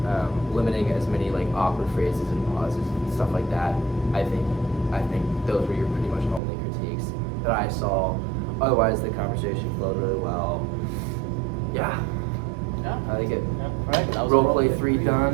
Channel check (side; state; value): left; drops out; at 6.4 s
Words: limiting as many like awkward phrases and pauses and stuff like that. I think those were your pretty much only critiques that I saw. Otherwise, the conversation flowed really well. Yeah, Yeah. I like it. Yeah. All right. That was Role a play roleplay 3 3.